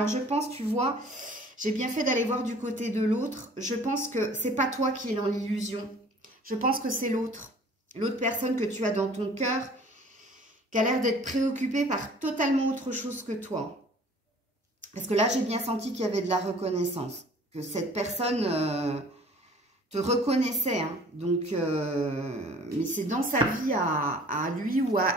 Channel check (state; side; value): normal; both; correlation 0.50